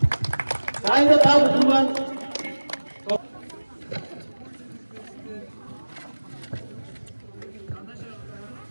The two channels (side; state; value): both; inverted; correlation -1.00